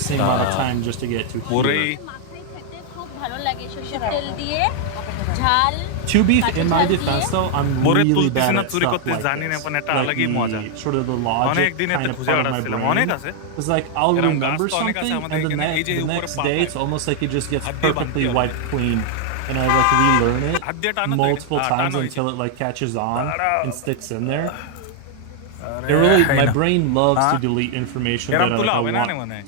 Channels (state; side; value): different; both; correlation 0.00